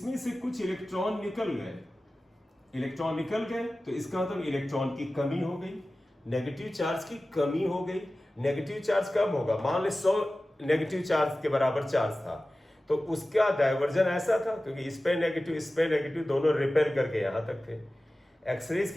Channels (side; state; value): both; normal; correlation 0.96